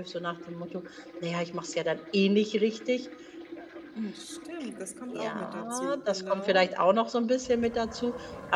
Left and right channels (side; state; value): both; identical; correlation 1.00